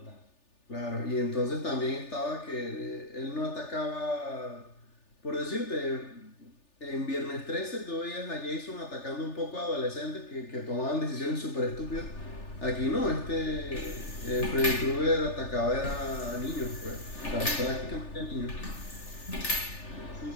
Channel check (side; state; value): right; late; 3.4 ms